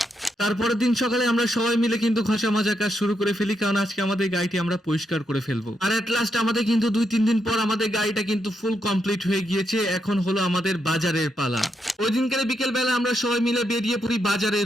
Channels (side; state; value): both; normal; correlation 0.80